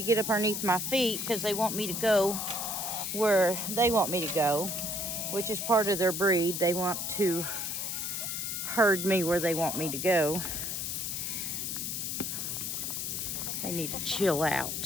get up underneath my feet because they want me to go where they want me to go, which is part of their breed. They want to herd me where they want me to go. They need to chill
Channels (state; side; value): noise; left; hiss, 3 dB below the sound